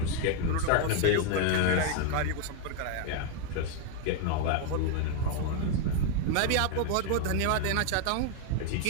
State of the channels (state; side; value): different; both; correlation 0.00